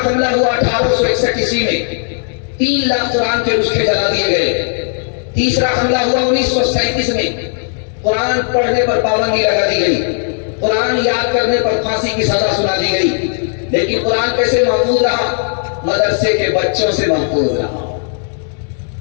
حملہ ہوا 1861 عیسوی میں، 3 لاکھ قرآن کے نسخے جلا دیے گئے۔ تیسرا حملہ ہوا 1937 میں، قرآن پڑھنے پر پابندی لگا دی گئی، قرآن یاد کرنے پر پھانسی کی سزا سنا دی گئی۔ لیکن قرآن کیسے محفوظ رہا؟ مدرسے کے بچوں سے محفوظ رہا،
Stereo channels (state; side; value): silent; right; 56 dB below the other